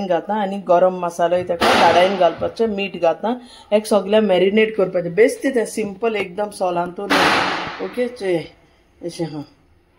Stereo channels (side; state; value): both; identical; correlation 1.00